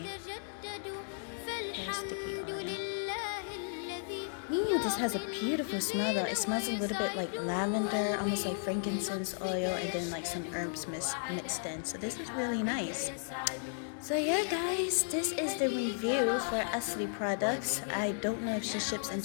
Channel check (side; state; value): right; silent; digital silence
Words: Very sticky oil. Ooh, this has a beautiful smell though. It smells a little bit like lavender, almost like frankincense oil, and then like some herbs mixed in. So this is really nice. So yeah guys, this is the review for Asli products. I don't know if she ships